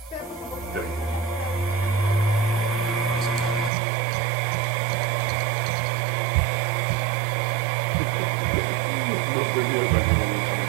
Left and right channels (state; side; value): drops out; left; at 3.7 s